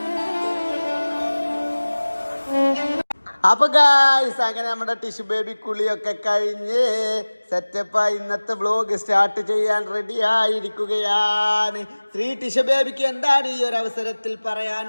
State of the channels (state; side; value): inverted; both; correlation -1.00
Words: അപ്പൊ ഗായ്സ് അങ്ങനെ നമ്മുടെ ടിഷ്യൂ ബേബി കുളിയൊക്കെ കഴിഞ്ഞ് സെറ്റപ്പായി ഇന്നത്തെ വ്ലോഗ് സ്റ്റാർട്ട് ചെയ്യാൻ റെഡി ആയിരിക്കുകയാണ്. ടിഷ്യൂ ബേബിക്ക് എന്താണ് ഈ ഒരു അവസരത്തിൽ